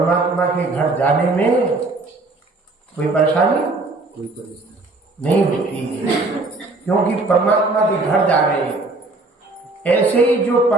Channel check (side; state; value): left; quieter; 3.2 dB